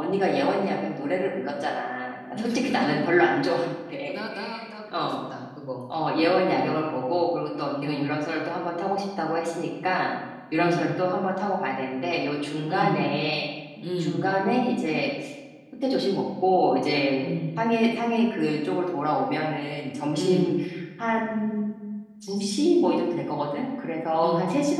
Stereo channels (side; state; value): both; identical; correlation 1.00